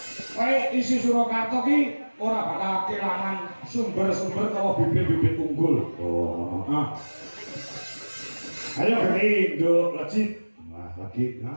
Kowe isi Surakarta ki ora bakal kelangan sumber-sumber utawa bibit-bibit unggul. Oh, heeh. Ayo gede, nduk, lecit. Wah, lagi.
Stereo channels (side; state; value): both; inverted; correlation -1.00